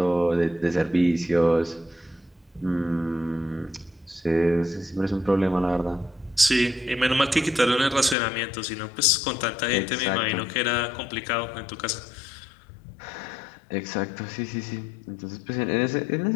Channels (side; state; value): right; drops out; at 8.2 s